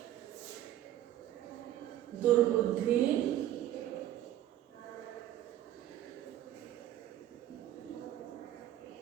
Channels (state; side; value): quieter; left; 12.7 dB